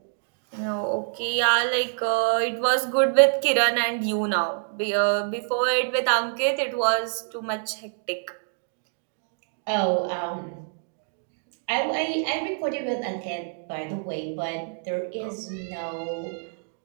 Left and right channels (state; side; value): silent; left; digital silence